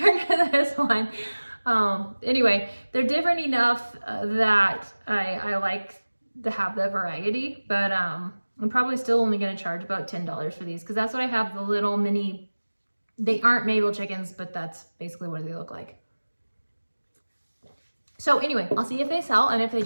to this one. Anyway, they're different enough that I like to have the variety, but I'm probably still only going to charge about $10 for these, because that's what I have, the little mini. They aren't Mabel chickens, but that's basically what they look like. So anyway, I'll see if they sell, and if they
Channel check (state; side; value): inverted; both; correlation -1.00